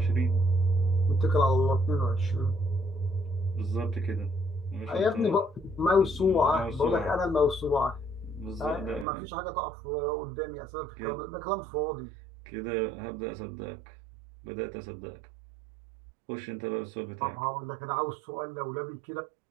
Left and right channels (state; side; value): drops out; left; at 9.1 s